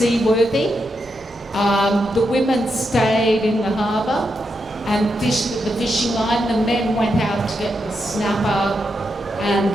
The women stayed in the harbour and fished with the fishing line. The men went out to get the snapper and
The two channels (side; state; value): both; normal; correlation 0.84